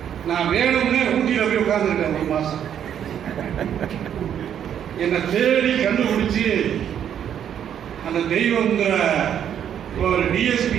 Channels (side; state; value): left; quieter; 9.3 dB